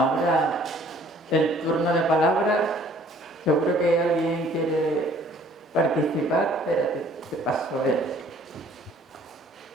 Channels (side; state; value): both; normal; correlation 0.56